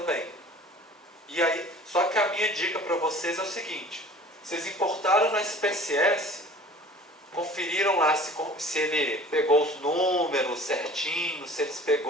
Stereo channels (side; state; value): both; normal; correlation 0.45